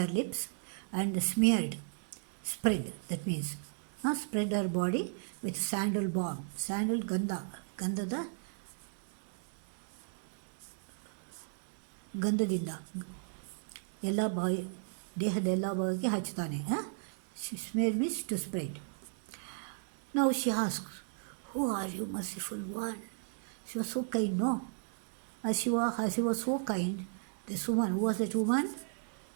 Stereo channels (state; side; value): silent; left; digital silence